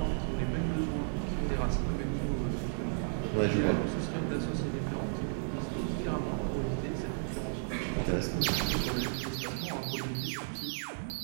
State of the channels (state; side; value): silent; left; digital silence